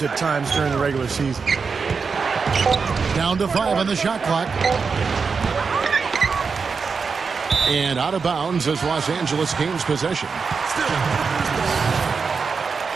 at times during the regular season. Down to 5 on the shot clock. And out of bounds as Los Angeles gains possession.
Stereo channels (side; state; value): left; quieter; 5.2 dB